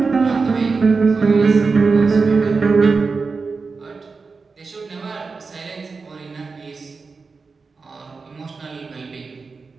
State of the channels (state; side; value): quieter; left; 4.5 dB